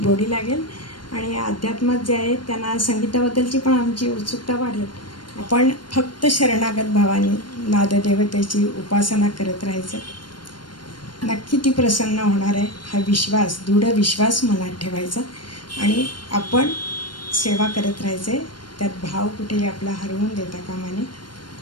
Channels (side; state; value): right; late; 0.72 ms